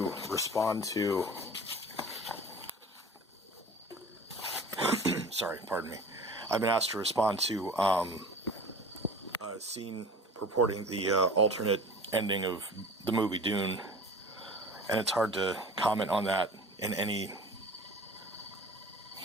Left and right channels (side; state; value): both; normal; correlation 0.40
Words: respond to I've been asked to respond to a scene purporting the alternate ending of the movie Dune, and it's hard to comment on that in any